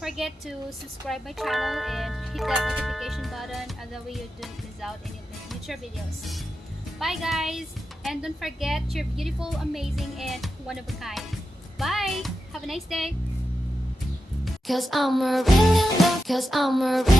to subscribe my channel and hit that notification button, that way you don't miss out any of my future videos. Bye guys, and don't forget, you're beautiful, amazing, and one of a kind. Bye, have a nice day. Cause I'm really in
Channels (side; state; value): both; normal; correlation 0.89